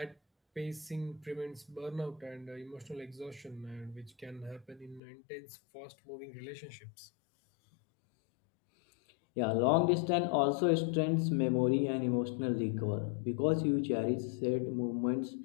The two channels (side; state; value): right; drops out; at 5.0 s